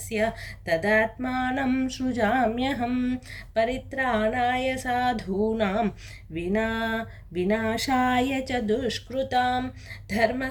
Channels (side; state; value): both; identical; correlation 1.00